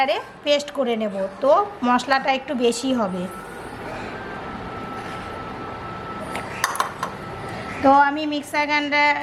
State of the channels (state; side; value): identical; both; correlation 1.00